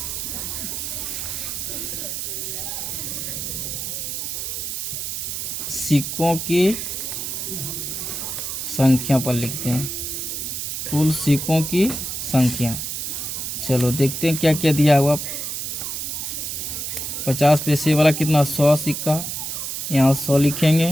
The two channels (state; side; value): noise; right; hiss, 4 dB below the sound